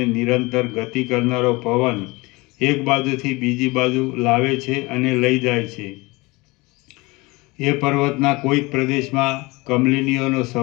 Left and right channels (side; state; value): right; quieter; 23.9 dB